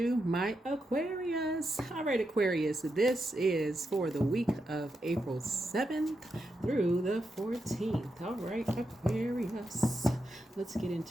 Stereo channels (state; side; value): normal; both; correlation 0.85